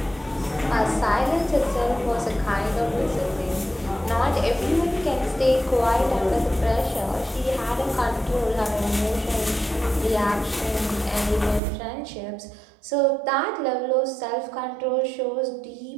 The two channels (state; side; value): drops out; left; at 11.6 s